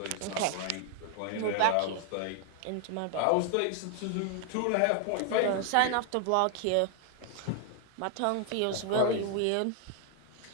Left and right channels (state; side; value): different; both; correlation 0.00